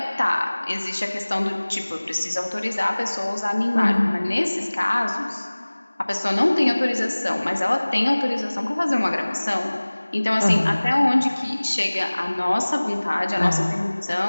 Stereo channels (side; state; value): both; inverted; correlation -1.00